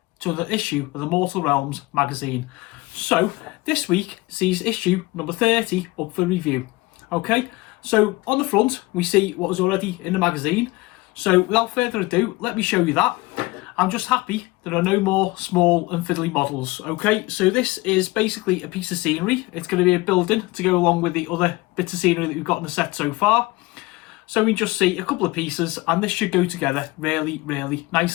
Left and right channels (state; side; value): quieter; right; 21.7 dB